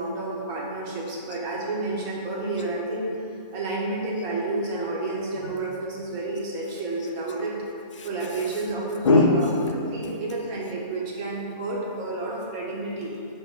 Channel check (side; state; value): both; inverted; correlation -0.40